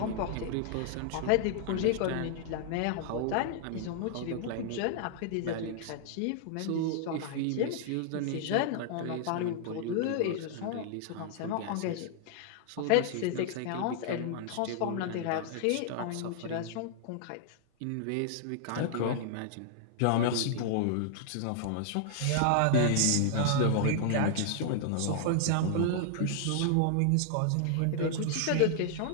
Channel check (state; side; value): different; both; correlation -0.01